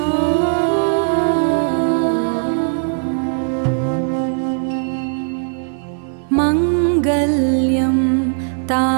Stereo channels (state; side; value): silent; left; 61 dB below the other